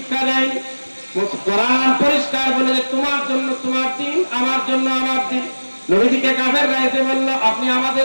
দেয়। কোরআন পরিষ্কার বলে যে তোমার জন্য তোমার দিন, আমার জন্য আমার দিন। নবীজিকে কাফেররা এসে বলল, আপনি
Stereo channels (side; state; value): both; inverted; correlation -1.00